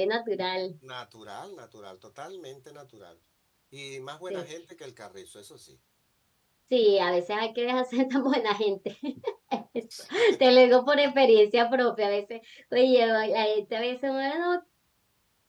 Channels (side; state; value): both; identical; correlation 1.00